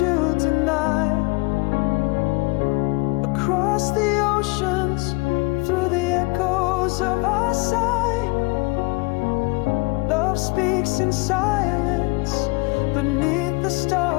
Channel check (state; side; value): quieter; right; 26.9 dB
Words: to deny. Across the oceans, through the echoes of our sigh, love speaks in silence beneath the